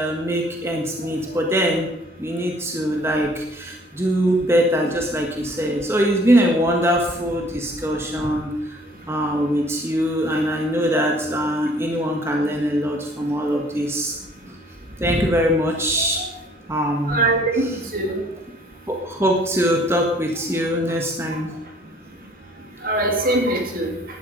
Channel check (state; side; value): normal; both; correlation 0.57